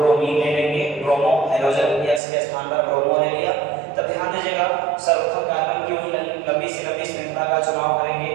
ले लेंगे, ब्रोमो, हाइड्रोजन X के स्थान पर ब्रोमो ले लिया। तब ध्यान दीजिएगा सर्वप्रथम कार्बन की वही लंबी से लंबी श्रृंखला का चुनाव करेंगे।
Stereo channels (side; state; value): left; drops out; at 2.2 s